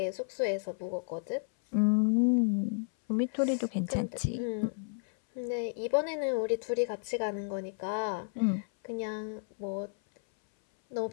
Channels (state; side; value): silent; right; 56 dB below the other